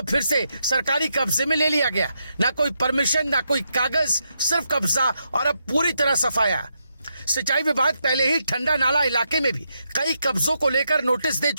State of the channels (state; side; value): inverted; both; correlation -0.82